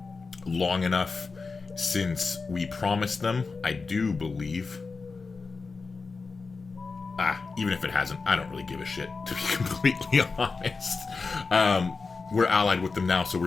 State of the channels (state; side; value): quieter; right; 4.4 dB